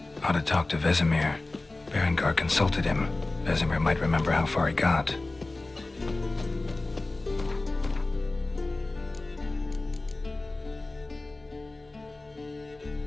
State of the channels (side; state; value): right; quieter; 3.1 dB